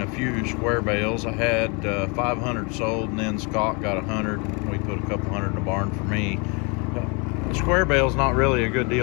a few square bales. I had 500 sold, and then Scott got 100. We put a couple hundred in the barn for me. The square bale's not really a good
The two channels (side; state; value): right; quieter; 31.8 dB